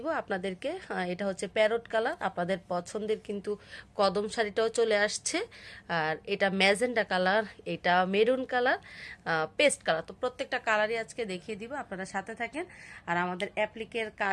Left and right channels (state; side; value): identical; both; correlation 1.00